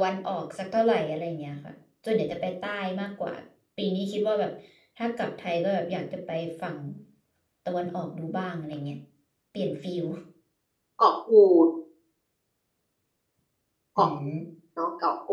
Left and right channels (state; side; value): identical; both; correlation 1.00